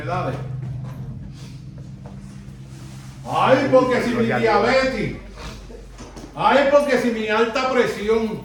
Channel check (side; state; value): both; identical; correlation 1.00